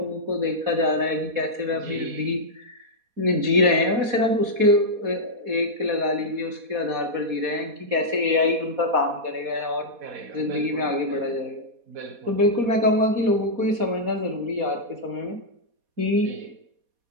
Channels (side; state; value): left; late; 4.2 ms